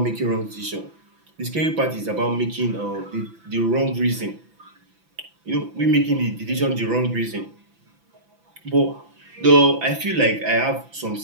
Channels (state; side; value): late; left; 5.9 ms